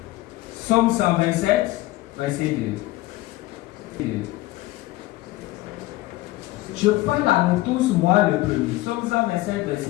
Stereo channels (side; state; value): right; quieter; 18.0 dB